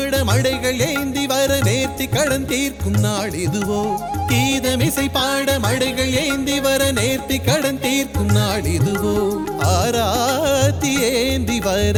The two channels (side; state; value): both; identical; correlation 1.00